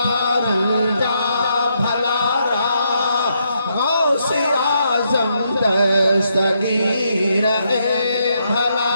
रंजा भलारा गौसे आजम दस्तगीर ए भला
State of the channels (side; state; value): both; inverted; correlation -0.78